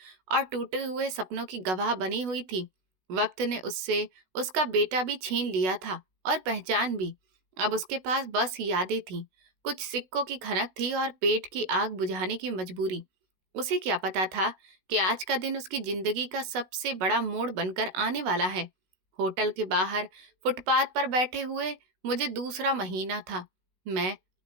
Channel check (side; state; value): left; late; 16 ms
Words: और टूटे हुए सपनों की गवाह बनी हुई थी। वक्त ने उससे उसका बेटा भी छीन लिया था और पहचान भी। अब उसके पास बस यादें थीं, कुछ सिक्कों की खनक थी और पेट की आग बुझाने की मजबूरी। उसे क्या पता था कि आज का दिन उसकी जिंदगी का सबसे बड़ा मोड़ बनकर आने वाला है। होटल के बाहर फुटपाथ पर बैठे हुए मुझे दूसरा महीना था। मैं